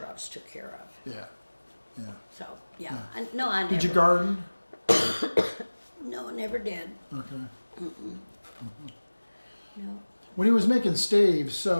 I was took care of. Yeah. Yeah. So yeah, Yeah. I never. Did you garden? No, I never did. Okay. No. When he was making staves,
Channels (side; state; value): both; inverted; correlation -1.00